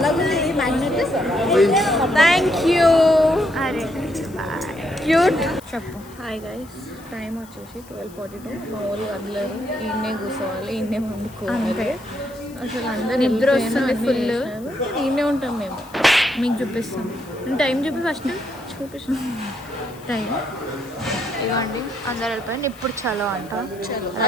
Thank you. అరే క్యూట్. చెప్పు. హాయ్ గైస్, టైం వచ్చేసి 12:42. మా వాళ్ళు వదలరు, ఈయనే కూర్చోవాలి, ఈయనే వండుకోవాలి. అసలు అందరు నిద్ర వస్తుంది ఫుల్. ఈయనే ఉంటాం మేము. మీకు చూపిస్తాం. టైం చూపి ఫస్ట్ చూపిస్తాం టైం. ఇవ్వండి, అందరు వెళ్ళిపోయింది. ఇప్పుడు చలో అంట.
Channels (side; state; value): left; noise; hiss, 24 dB below the sound